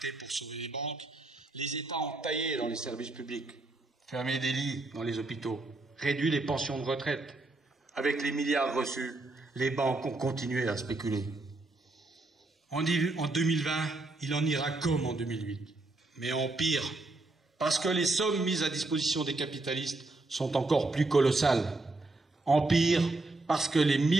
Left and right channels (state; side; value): quieter; left; 3.1 dB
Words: pour sauver les banques, les États ont taillé dans les services publics, fermé des lits dans les hôpitaux, réduit les pensions de retraite. Avec les milliards reçus, les banques ont continué à spéculer. En 2020, il en ira comme en 2008, mais en pire, parce que les sommes mises à disposition des capitalistes sont encore plus colossales. En pire, parce que les